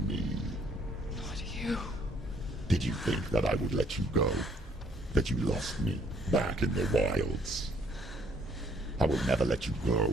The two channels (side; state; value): both; normal; correlation 0.64